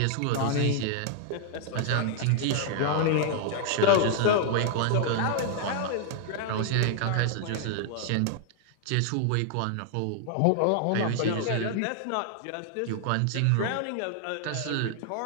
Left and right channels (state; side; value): different; both; correlation 0.00